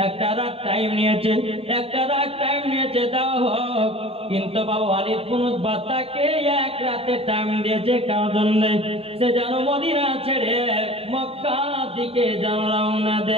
একটা রাত টাইম নিয়েছে, একটা রাত টাইম নিয়েছে, দাও হোক। কিন্তু বাবা ওয়ালিদ বিন উতবা তাকে এক রাতে টাইম দিয়েছে কার জন্য? সে যেন মদিনা ছেড়ে মক্কা দিকে যেন রওনা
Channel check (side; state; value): left; late; 0.28 ms